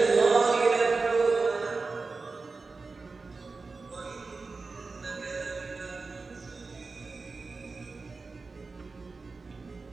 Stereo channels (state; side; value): quieter; left; 4.0 dB